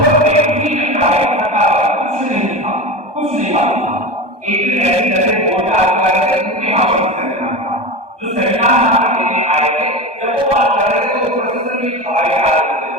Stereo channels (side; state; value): left; late; 1.2 ms